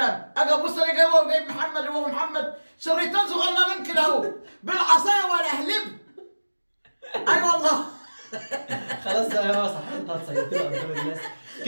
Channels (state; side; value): inverted; both; correlation -1.00